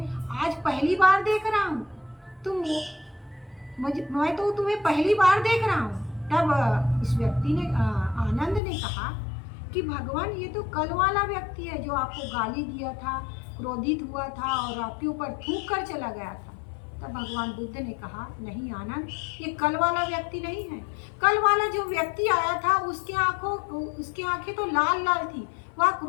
आज पहली बार देख रहा हूँ, मैं तो तुम्हें पहली बार देख रहा हूँ। तब उस व्यक्ति ने आनंद ने कहा कि भगवान, ये तो कल वाला व्यक्ति है जो आपको गाली दिया था, क्रोधित हुआ था और आपके ऊपर थूक कर चला गया था। तब भगवान बुद्ध ने कहा, नहीं आनंद, ये कल वाला व्यक्ति नहीं है। कल वाला जो व्यक्ति आया था उसकी आंखें तो लाल लाल थी, वह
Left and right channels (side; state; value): right; drops out; at 8.6 s